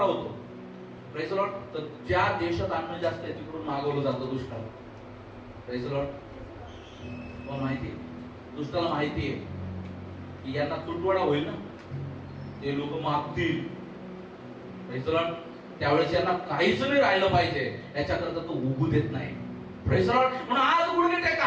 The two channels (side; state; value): both; identical; correlation 1.00